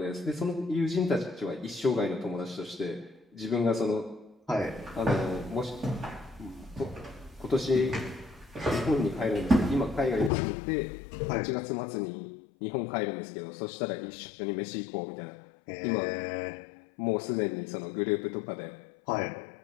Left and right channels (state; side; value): drops out; right; at 10.3 s